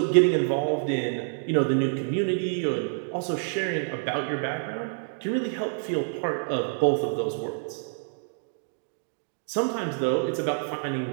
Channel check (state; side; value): silent; left; digital silence